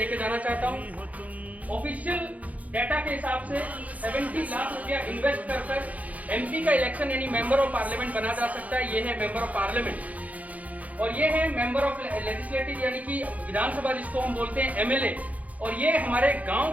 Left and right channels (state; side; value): late; left; 0.072 ms